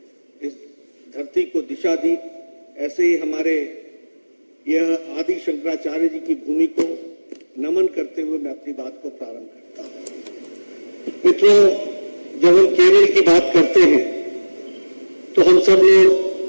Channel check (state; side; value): inverted; both; correlation -1.00